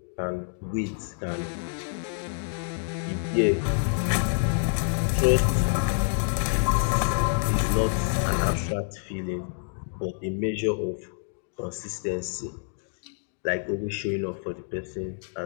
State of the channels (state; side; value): silent; right; digital silence